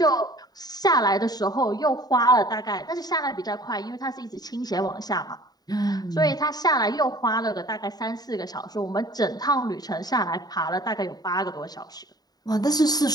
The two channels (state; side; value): late; right; 0.19 ms